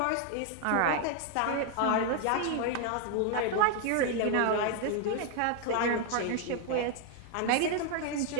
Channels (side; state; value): both; different; correlation 0.00